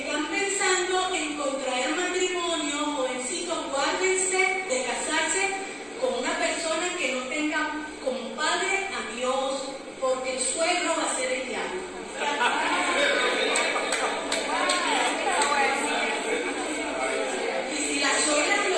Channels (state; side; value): identical; both; correlation 1.00